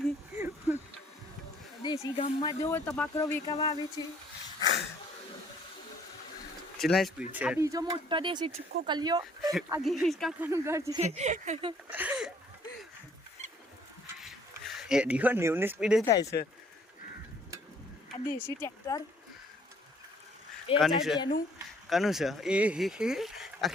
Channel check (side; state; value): both; normal; correlation 0.60